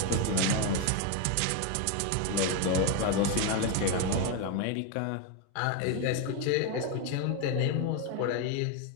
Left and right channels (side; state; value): both; different; correlation 0.02